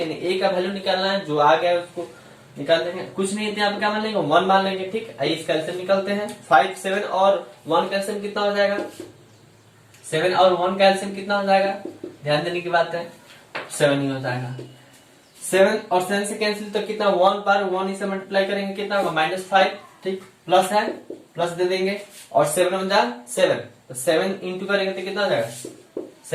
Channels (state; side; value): identical; both; correlation 1.00